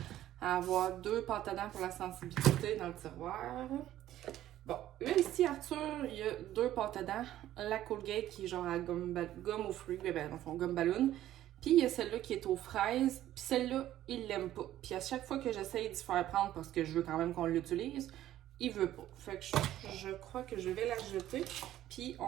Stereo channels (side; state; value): left; quieter; 13.2 dB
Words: à avoir 2 pâtes à dents pour la sensibilité dans le tiroir. Bon, là ici, Arthur, il y a 2 pâtes à dents. La Colgate qui est genre à gomme aux fruits, ben dans le fond, gomme ballon. Puis il y a celle-là qui est aux fraises. Puis celle-là, il l'aime pas. Puis à chaque fois que j'essaye d'y faire prendre parce que je veux quand même qu'on l'utilise, il veut pas. Fait que je crois que je vais la jeter. Puis